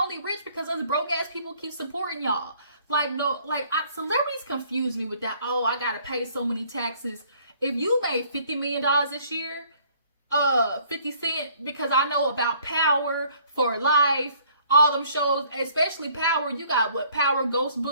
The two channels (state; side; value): inverted; both; correlation -0.59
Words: only rich because us broke ass people keep supporting y'all. Celebrities confuse me with that. Oh, I got to pay so many taxes. If you made $50 million this year, 50 Cent, because I know about Power, For Life, all them shows, especially Power. You got what, Power Ghost